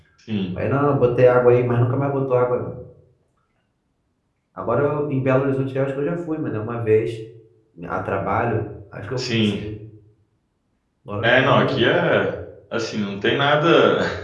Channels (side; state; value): both; identical; correlation 1.00